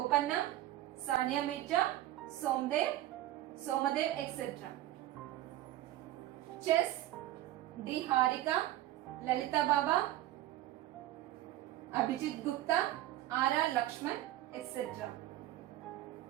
Sania Mirza, Somadev, etc. Chess: D. Harika, Lalita Baba, Abhijit Gupta, R. Lakshman, etc.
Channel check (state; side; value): quieter; left; 14.5 dB